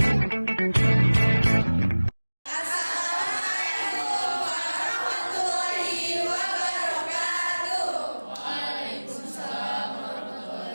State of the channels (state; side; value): inverted; both; correlation -1.00